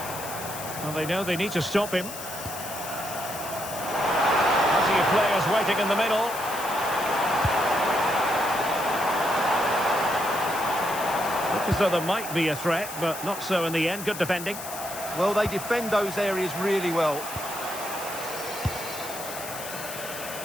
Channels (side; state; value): left; noise; hiss, 10 dB below the sound